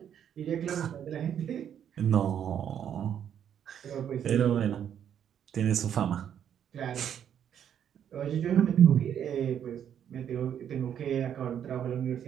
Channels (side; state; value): left; quieter; 9.2 dB